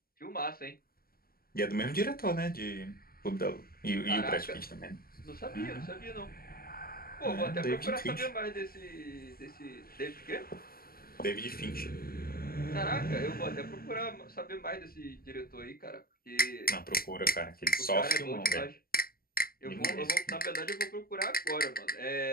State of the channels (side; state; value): right; late; 0.43 ms